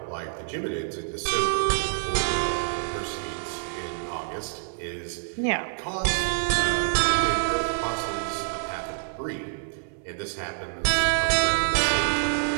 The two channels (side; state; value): left; silent; 60 dB below the other